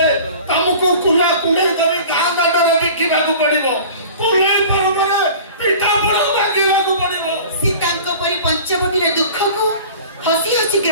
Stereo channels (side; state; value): both; inverted; correlation -0.42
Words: ତମକୁ କୁଣା କୁଣ୍ଡେଇ କରି ଗାଁ ଦାଣ୍ଡରେ ବିକିବାକୁ ପଡିବ। କୁଣ୍ଡେଇ ପର୍ବରେ ପିଠା ପଣା ମାଗିବାକୁ ପଡିବ। ସୀତାଙ୍କ ପରି ପଞ୍ଚବଟୀର ଦୁଃଖକୁ ହସି ହସି